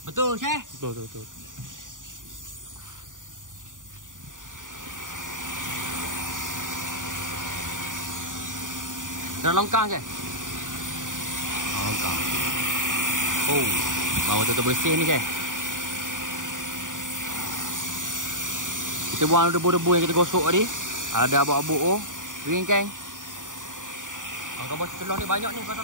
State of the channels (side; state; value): left; late; 0.88 ms